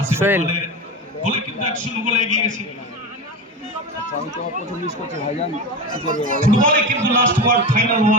আসিফ সোহেল। ইকবালের গোলে কিন্তু 1-0 গোলে এগিয়ে গেছে। ফুটবলে কিন্তু last word, final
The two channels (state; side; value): normal; both; correlation 0.23